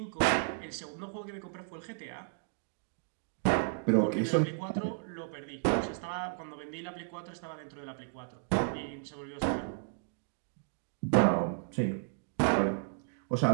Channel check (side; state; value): left; silent; digital silence